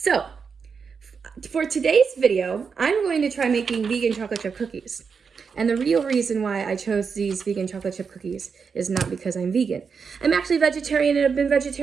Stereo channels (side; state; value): left; quieter; 5.8 dB